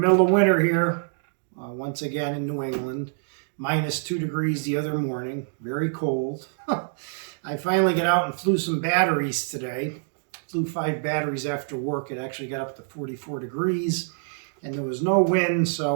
of winter here, once again in New England. -2 degrees the other morning, very cold. I finally got out and flew some batteries today. Flew 5 batteries after work. It actually got up to 44 degrees and there was no wind,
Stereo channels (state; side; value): silent; left; digital silence